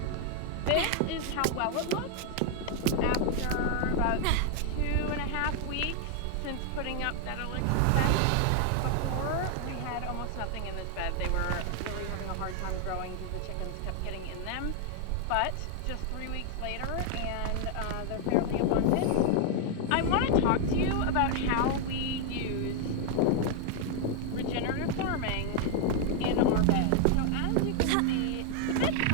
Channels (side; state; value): both; different; correlation 0.00